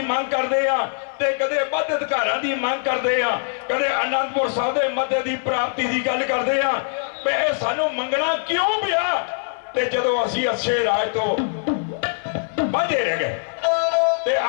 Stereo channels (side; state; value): right; silent; 57 dB below the other